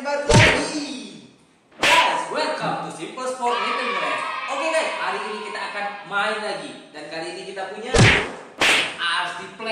baru lagi. Guys, welcome to Simple Sport Nintendo Race. Oke guys, hari ini kita akan main lagi. Dan kali ini kita punya RC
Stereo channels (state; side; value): identical; both; correlation 1.00